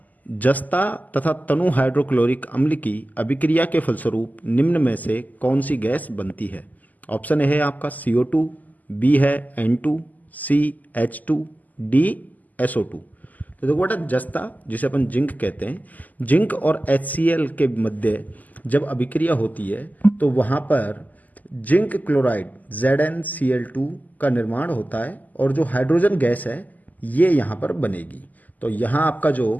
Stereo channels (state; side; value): late; right; 0.080 ms